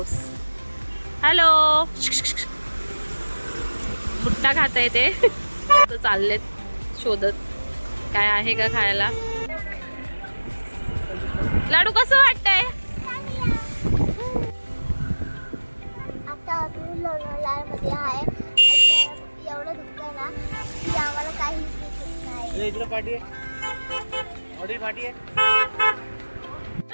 हॅलो, भुट्टा खाताय ते. चाललेत शोधत काय आहे का खायला. लाडू कसं वाटतंय? आता आपण लोणावळ्यामध्ये आहे. एवढं दुःख आहे ना की आम्हाला काहीच दिसत नाही. इकडे पाठी आहे, ऑडी पाठी आहे.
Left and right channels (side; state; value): both; inverted; correlation -1.00